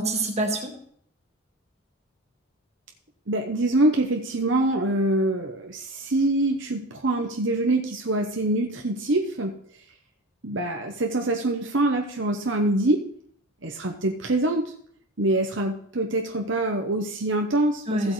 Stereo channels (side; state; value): both; normal; correlation 0.29